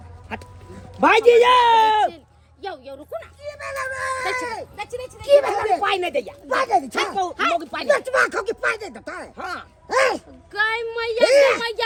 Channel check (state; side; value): identical; both; correlation 1.00